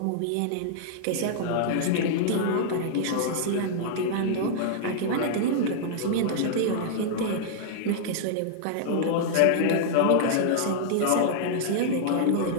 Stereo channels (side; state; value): both; different; correlation -0.01